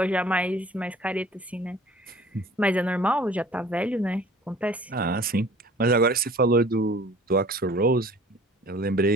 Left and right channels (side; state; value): both; normal; correlation 0.49